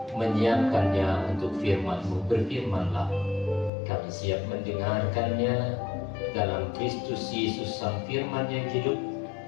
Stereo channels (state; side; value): drops out; right; at 3.7 s